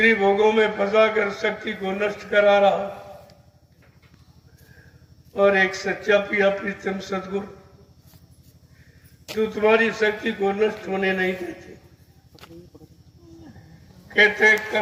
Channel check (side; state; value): both; identical; correlation 1.00